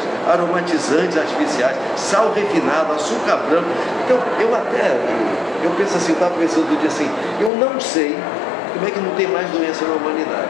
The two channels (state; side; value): drops out; right; at 7.5 s